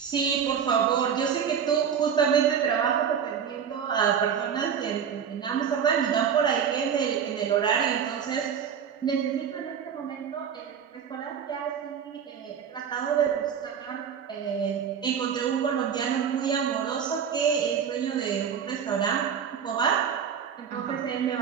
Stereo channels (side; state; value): left; quieter; 7.7 dB